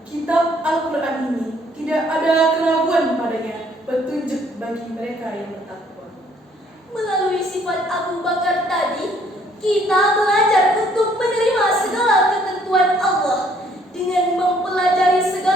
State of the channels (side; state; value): both; normal; correlation 0.63